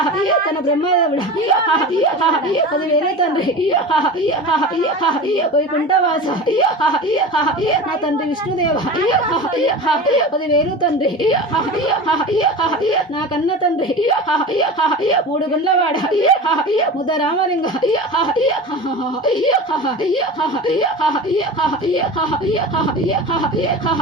తన బ్రహ్మదేవుడు 10,000 తండ్రి వైకుంఠవాస నా తండ్రి విష్ణుదేవ 10,000 తండ్రి నా కన్న తండ్రి మూడు గుండ్లవాడ ముద్ద రామలింగ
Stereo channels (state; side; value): normal; both; correlation 0.31